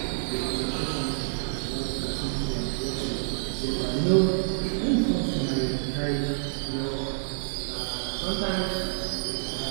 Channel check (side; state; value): left; silent; 59 dB below the other